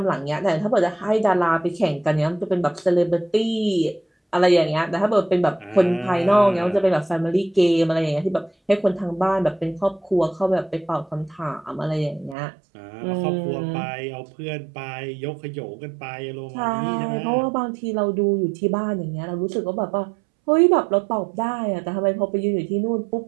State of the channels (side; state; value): left; drops out; at 12.4 s